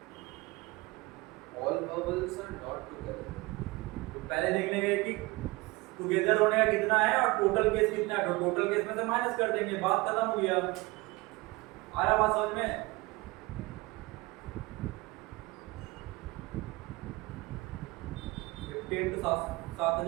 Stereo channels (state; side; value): quieter; left; 22.6 dB